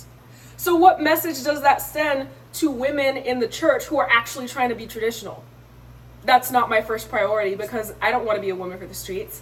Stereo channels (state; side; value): identical; both; correlation 1.00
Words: So what message does that send to women in the church who are actually trying to be traditional? That's not my first priority, because I don't want to be a woman for the streets.